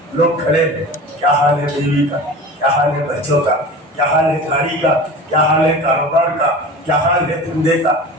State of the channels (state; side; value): normal; both; correlation 0.35